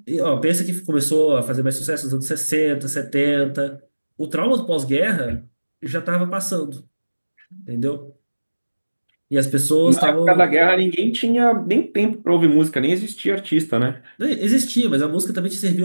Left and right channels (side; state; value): both; inverted; correlation -1.00